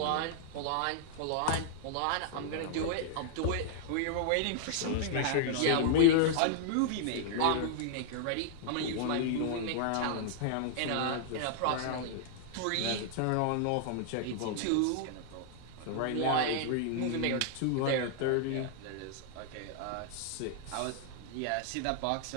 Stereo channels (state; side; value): different; both; correlation -0.01